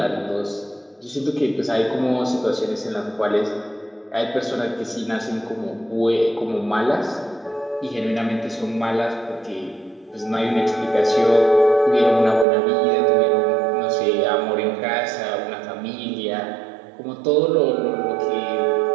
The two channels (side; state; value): left; drops out; at 12.5 s